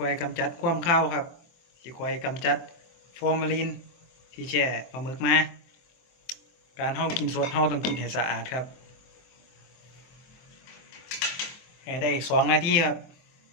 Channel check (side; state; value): right; late; 23 ms